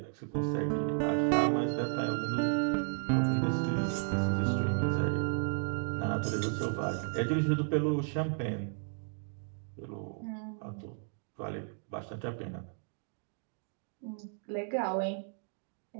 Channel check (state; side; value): silent; left; 55 dB below the other